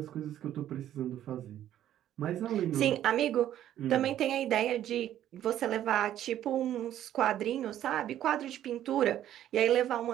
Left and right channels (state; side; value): quieter; left; 11.8 dB